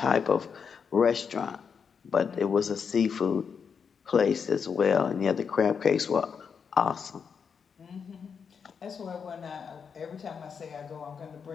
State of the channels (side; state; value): right; quieter; 6.4 dB